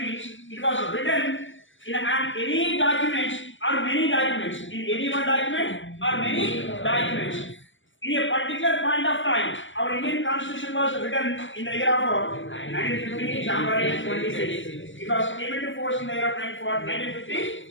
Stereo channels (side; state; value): right; late; 0.56 ms